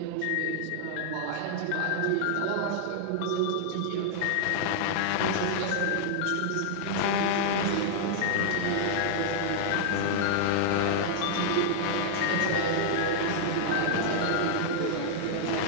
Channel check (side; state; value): both; different; correlation -0.01